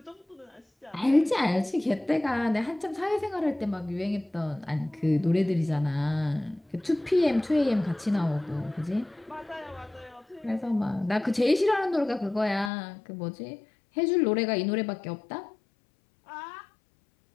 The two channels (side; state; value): right; drops out; at 12.7 s